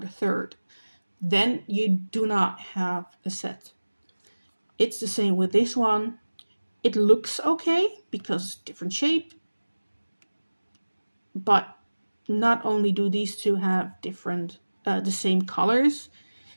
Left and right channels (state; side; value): inverted; both; correlation -1.00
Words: third. Then you do not have a set. It's the same with this one. It looks okay because different shape, but not only do these two have different, the same colors,